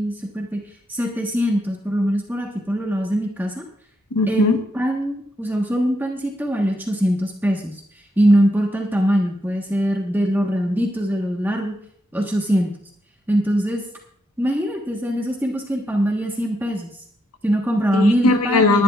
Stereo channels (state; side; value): normal; both; correlation 0.80